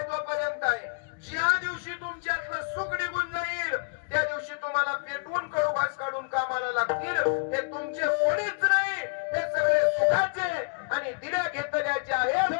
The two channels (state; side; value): quieter; right; 37.4 dB